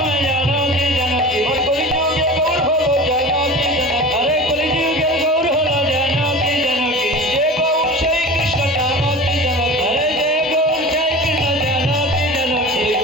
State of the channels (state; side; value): normal; both; correlation 0.35